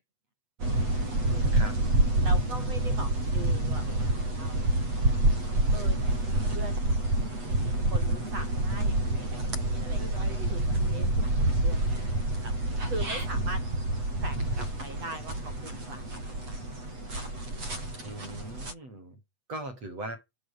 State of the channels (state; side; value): late; left; 8.1 ms